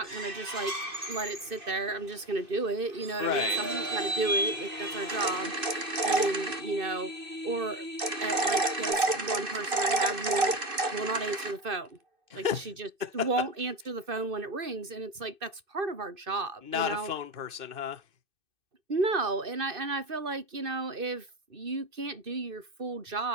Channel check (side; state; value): left; late; 2.6 ms